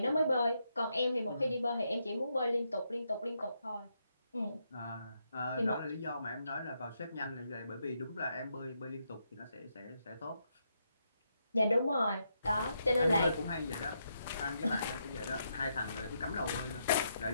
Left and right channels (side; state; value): both; inverted; correlation -0.80